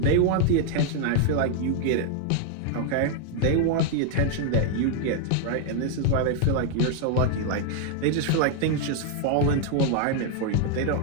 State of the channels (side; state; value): both; different; correlation 0.00